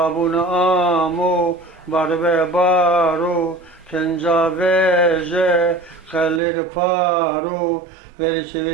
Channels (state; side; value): drops out; left; at 6.4 s